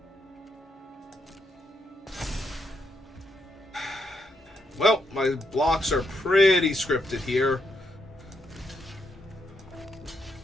Well, my blocks are pretty scripted here.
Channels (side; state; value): both; normal; correlation 0.79